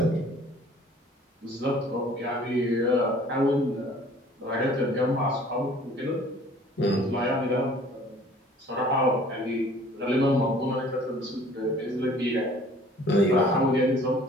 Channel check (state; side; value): normal; both; correlation 0.53